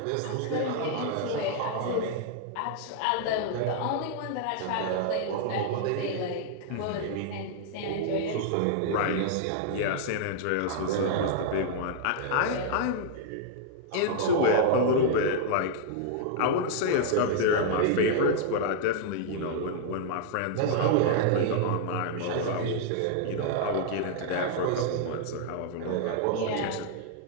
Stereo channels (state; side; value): different; both; correlation -0.01